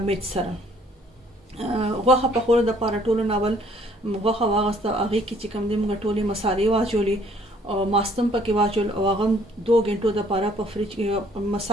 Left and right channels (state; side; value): normal; both; correlation 0.61